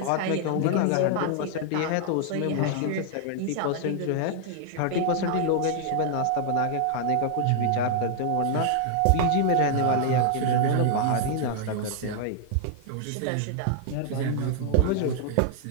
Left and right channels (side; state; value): both; different; correlation 0.00